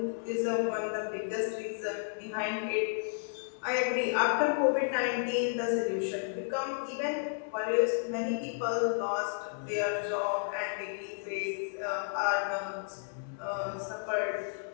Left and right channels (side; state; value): right; silent; digital silence